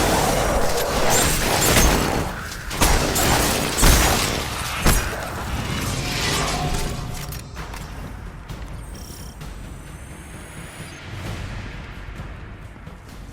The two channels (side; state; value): both; identical; correlation 1.00